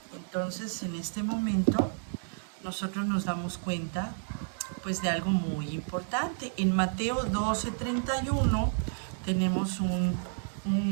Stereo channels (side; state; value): left; silent; digital silence